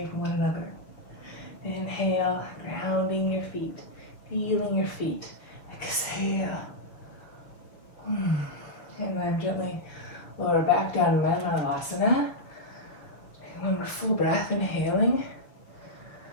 from one another. Inhale, grounding your feet, feeling your feet. Exhale. And then gently lower back down to Manasana. One more full breath, inhaling.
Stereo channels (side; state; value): right; late; 6.5 ms